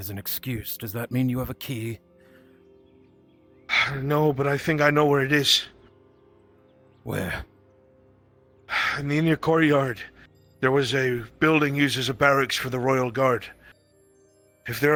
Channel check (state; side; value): identical; both; correlation 1.00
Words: an excuse. Does that mean you have a key? No, but I think I know where it is. Where? In the inner courtyard. There was a building used as a barracks for the Royal Guard. If